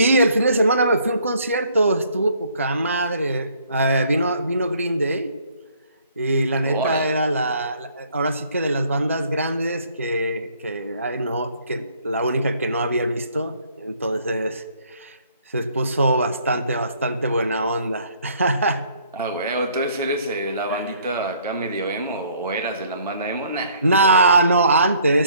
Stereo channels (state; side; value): inverted; both; correlation -0.62